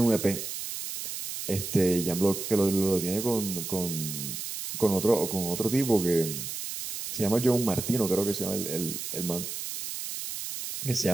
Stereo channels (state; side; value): noise; right; hiss, 6 dB below the sound